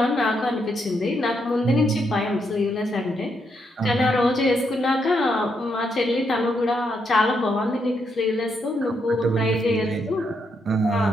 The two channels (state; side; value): normal; both; correlation 0.79